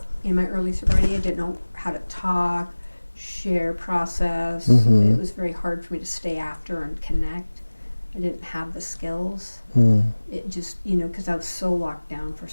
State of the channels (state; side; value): inverted; both; correlation -1.00